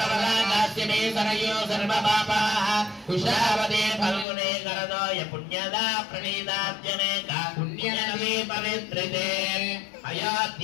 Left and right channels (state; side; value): drops out; right; at 4.2 s